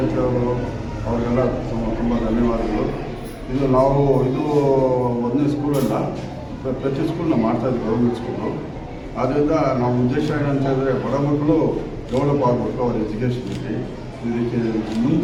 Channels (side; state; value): both; identical; correlation 1.00